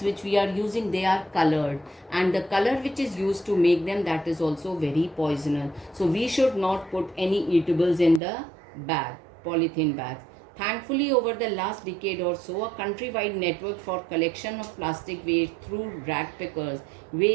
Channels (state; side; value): drops out; left; at 8.2 s